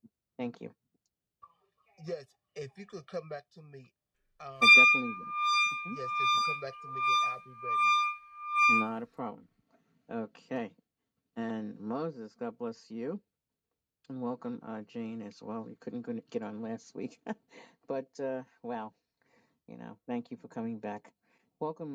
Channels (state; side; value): identical; both; correlation 1.00